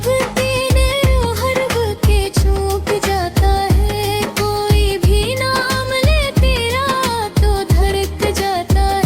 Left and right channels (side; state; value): both; identical; correlation 1.00